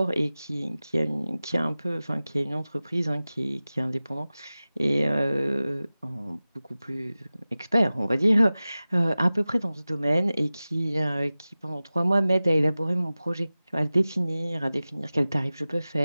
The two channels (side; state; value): both; inverted; correlation -0.96